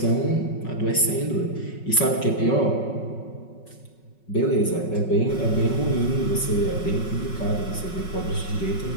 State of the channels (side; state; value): right; late; 5.4 ms